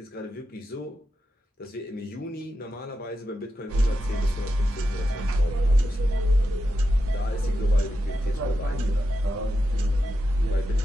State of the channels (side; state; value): both; normal; correlation 0.88